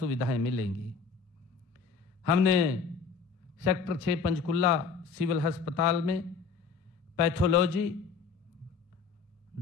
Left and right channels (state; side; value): quieter; right; 5.4 dB